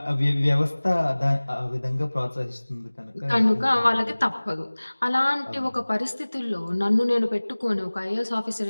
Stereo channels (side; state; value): both; inverted; correlation -1.00